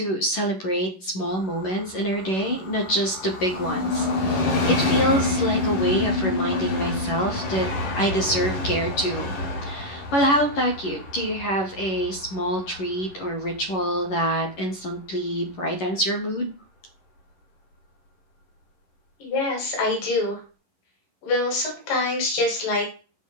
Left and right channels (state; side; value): late; right; 11 ms